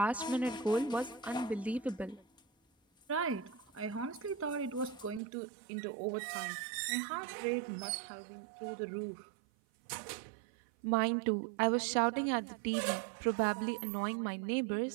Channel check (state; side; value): drops out; left; at 5.2 s